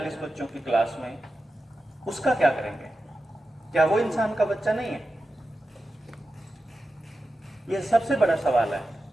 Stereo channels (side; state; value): both; normal; correlation 0.92